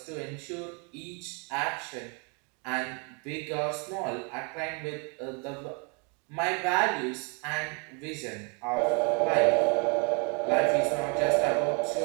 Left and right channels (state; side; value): quieter; left; 35.3 dB